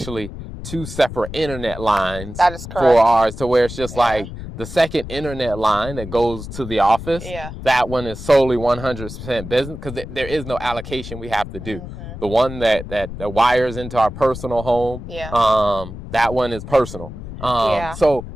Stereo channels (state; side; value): noise; left; rumble, 11 dB below the sound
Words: 2 separate internet lines That is correct. for ours, to where it's just like the second internet line that goes to the office. Yeah. That one is solely 100% business because there is no allocation we have to do. Mm-hmm. The one that wires into our personal home, that one is personal. So,